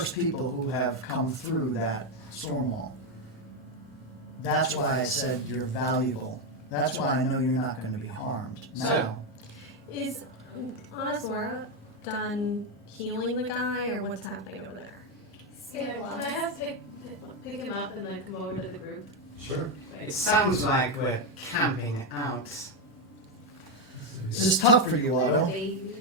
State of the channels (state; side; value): normal; both; correlation 0.06